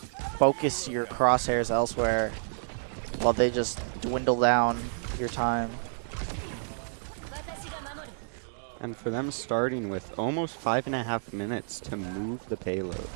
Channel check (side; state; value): left; silent; digital silence